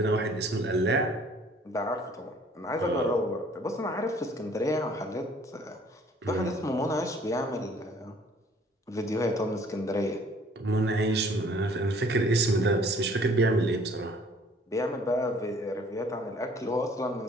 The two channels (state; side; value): normal; both; correlation 0.56